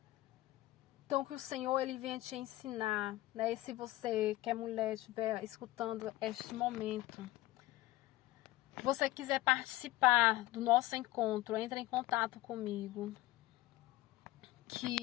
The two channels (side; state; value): right; quieter; 16.8 dB